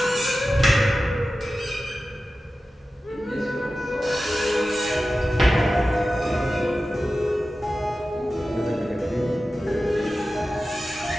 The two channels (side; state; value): both; normal; correlation 0.94